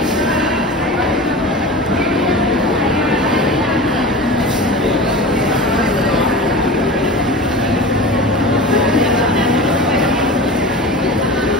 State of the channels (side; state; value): both; normal; correlation 0.32